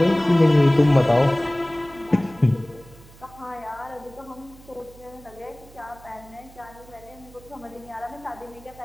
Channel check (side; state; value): right; noise; hum, 22 dB below the sound